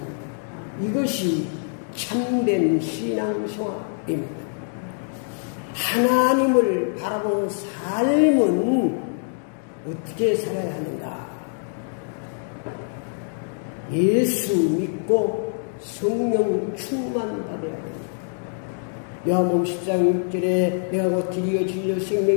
이것이 참된 신앙생활입니다. 하나님을 바라보는 삶은 어떻게 살아야 하는가? 예수 믿고 성령 충만 받아야 합니다. 요한복음 10장 6절에 내가 곧 길이요 진리요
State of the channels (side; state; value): right; silent; digital silence